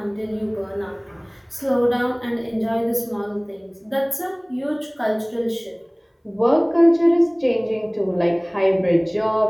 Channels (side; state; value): both; identical; correlation 1.00